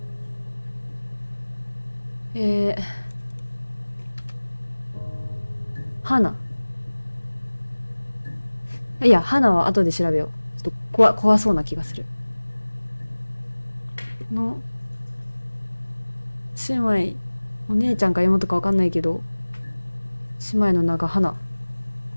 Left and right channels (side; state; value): both; inverted; correlation -1.00